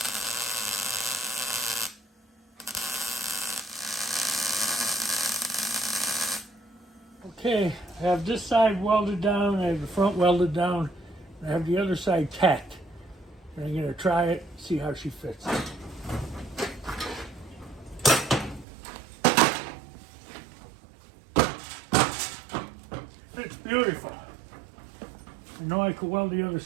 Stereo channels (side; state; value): left; drops out; at 18.7 s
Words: Okay, I have this side welded down. I have the front welded down. I have the other side tacked. And I'm going to try it, see how she fits. It's beautiful. I know I can weld the other